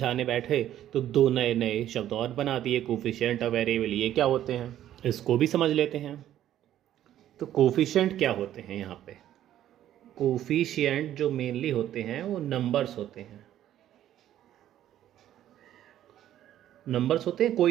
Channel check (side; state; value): left; quieter; 11.9 dB